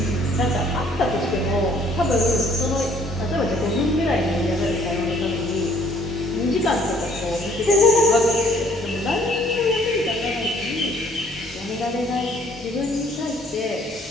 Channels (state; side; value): normal; both; correlation 0.61